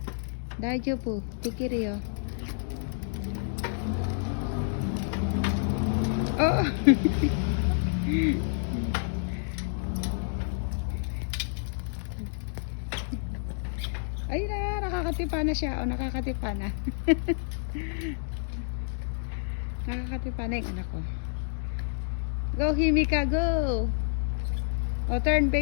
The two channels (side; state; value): right; silent; digital silence